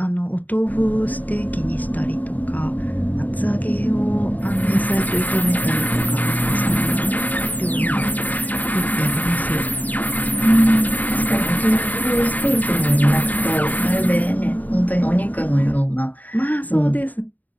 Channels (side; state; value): right; late; 0.080 ms